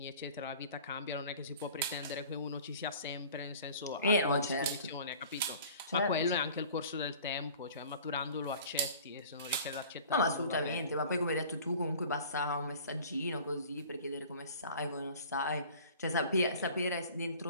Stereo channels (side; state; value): both; inverted; correlation -0.46